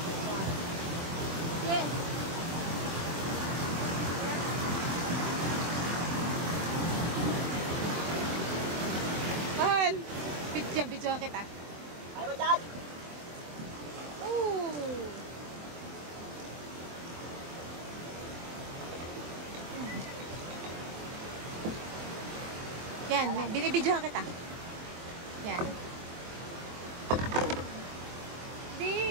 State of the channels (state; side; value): late; left; 24 ms